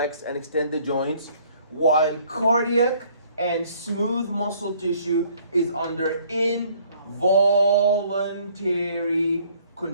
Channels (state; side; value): inverted; both; correlation -0.60